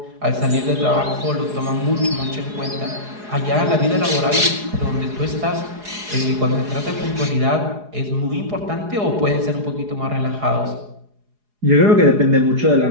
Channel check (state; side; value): late; left; 4.8 ms